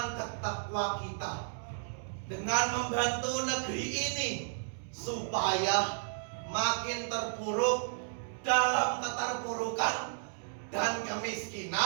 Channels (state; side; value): silent; left; digital silence